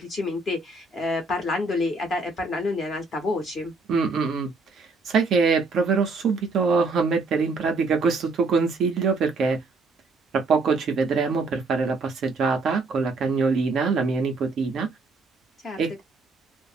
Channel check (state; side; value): quieter; left; 3.6 dB